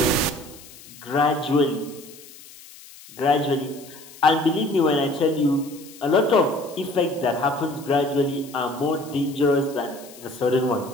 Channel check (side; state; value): left; noise; hiss, 20 dB below the sound